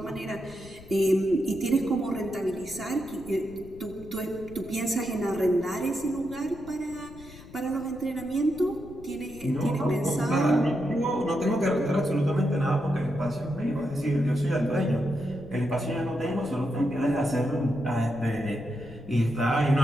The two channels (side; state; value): left; noise; rumble, 19 dB below the sound